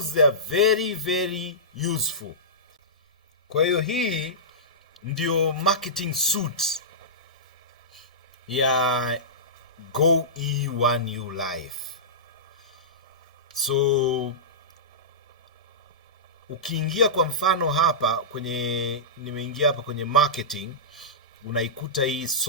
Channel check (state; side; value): normal; both; correlation -0.18